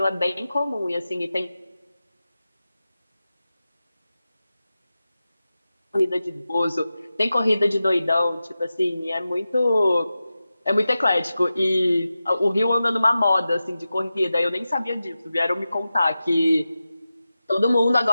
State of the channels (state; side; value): inverted; both; correlation -0.93